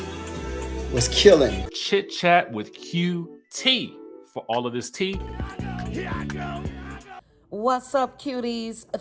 was killing. Chit chat with QT for all of this tea. Here I go. What's up, cuties?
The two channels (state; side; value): identical; both; correlation 1.00